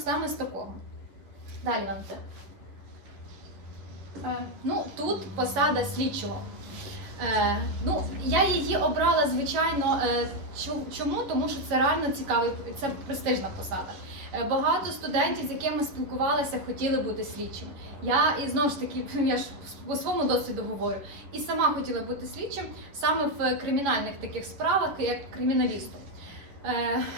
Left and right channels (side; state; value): left; late; 10 ms